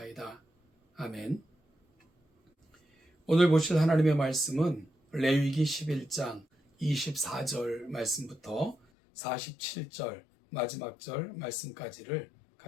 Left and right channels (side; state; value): right; drops out; at 8.8 s